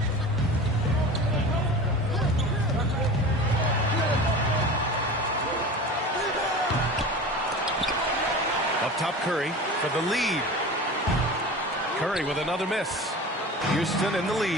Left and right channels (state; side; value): normal; both; correlation 0.34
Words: Up top Curry for the lead. Curry with another miss. Houston in the